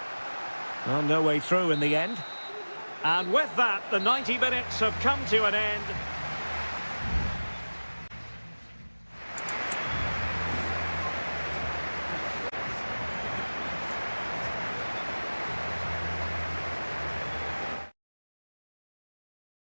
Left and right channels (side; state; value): both; inverted; correlation -1.00